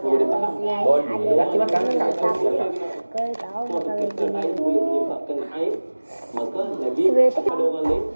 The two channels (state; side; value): inverted; both; correlation -1.00